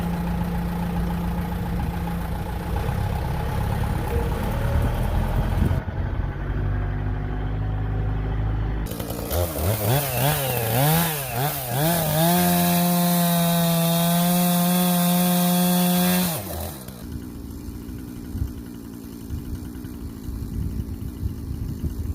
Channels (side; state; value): both; identical; correlation 1.00